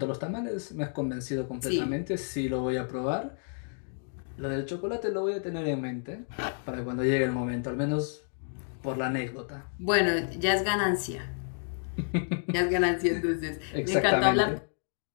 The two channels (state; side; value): silent; right; 58 dB below the other